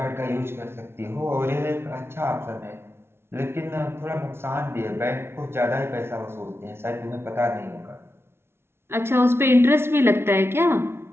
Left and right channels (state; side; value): late; left; 0.12 ms